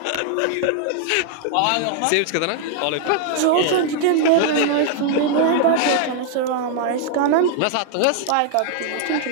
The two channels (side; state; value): both; different; correlation 0.00